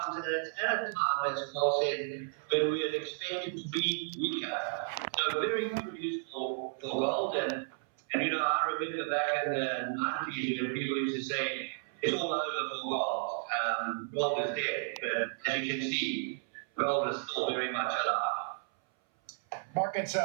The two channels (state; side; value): silent; left; 56 dB below the other